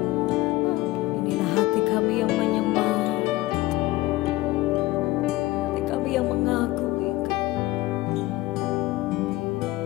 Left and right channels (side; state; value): right; quieter; 18.6 dB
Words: Inilah hati kami yang menyembah, hati kami yang mengagumi Kau.